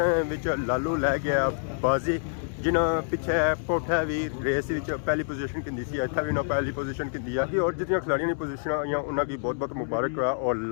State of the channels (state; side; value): silent; right; digital silence